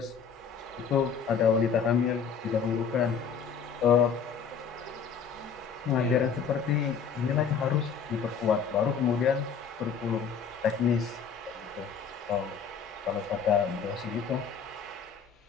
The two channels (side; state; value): right; quieter; 6.4 dB